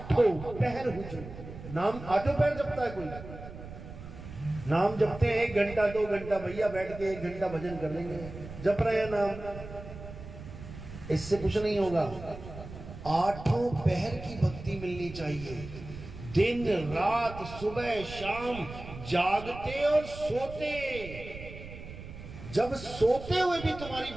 पहर हुजूर। नाम आठों पहर जपता है कोई? नाम जपते हैं 1 घंटा 2 घंटा, भैया बैठ के 1 घंटा भजन कर लेंगे, जप रहे हैं नाम, इससे कुछ नहीं होगा। आठों पहर की भक्ति मिलनी चाहिए, दिन रात सुबह शाम, जागते और सोते। जब सोते हुए भी तुम्हारी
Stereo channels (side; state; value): right; noise; rumble, 13 dB below the sound